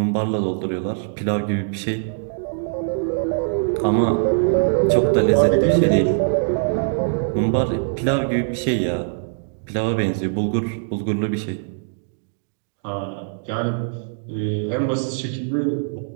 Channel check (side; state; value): left; silent; digital silence